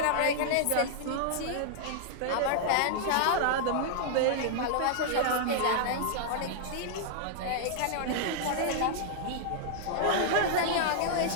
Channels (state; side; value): different; both; correlation -0.01